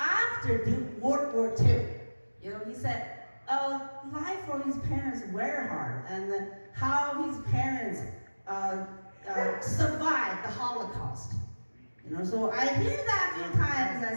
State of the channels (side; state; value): both; inverted; correlation -1.00